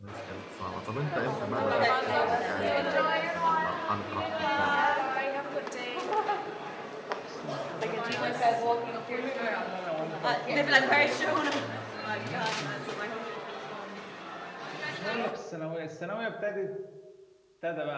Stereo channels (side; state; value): both; identical; correlation 1.00